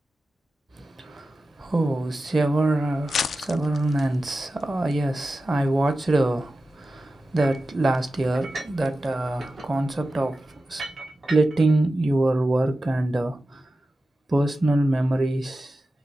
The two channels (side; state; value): both; normal; correlation 0.93